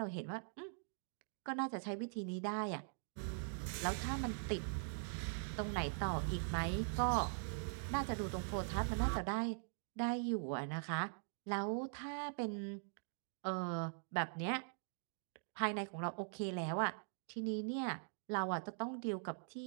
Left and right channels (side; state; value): left; silent; digital silence